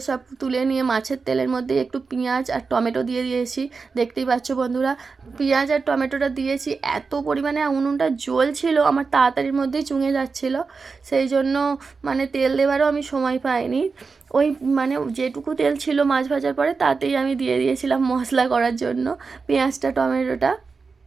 সব তুলে নিয়ে মাছের তেলের মধ্যে একটু পেঁয়াজ আর টমেটো দিয়ে দিয়েছি। দেখতেই পাচ্ছ বন্ধুরা, পেঁয়াজ আর টমেটোটা দিয়েছি। এত পরিমাণে উনুনটা জ্বলছিল, আমার তাড়াতাড়ির মধ্যেই চুঙে যাচ্ছিল, সেই জন্য মানে তেল দেওয়ারও আমি সময় পাইনি। ওই মানে যেটুকু তেল ছিল মাছ ভাজার পরে তাতেই আমি দিয়ে দিয়েছিলাম মশলা করার জন্য পেঁয়াজটা, টমেটোটা।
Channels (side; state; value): left; quieter; 4.7 dB